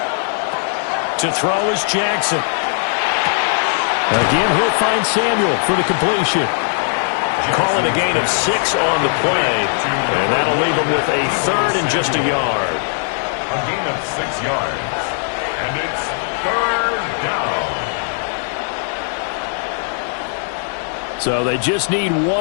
To throw is Jackson. Again, he'll find Samuel for the completion. Call it a gain of 6 on the play, and that'll leave him with a third and just a yard. A gain of 6 yards, and it's third down. So they just need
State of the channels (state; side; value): silent; right; 64 dB below the other